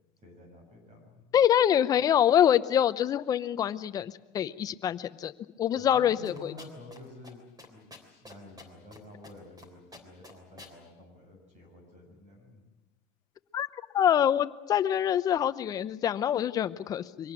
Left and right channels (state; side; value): quieter; right; 9.7 dB